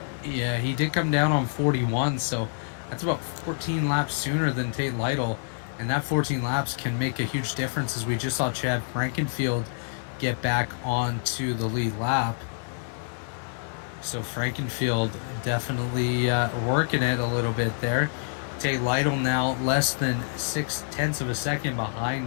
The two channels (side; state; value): right; silent; digital silence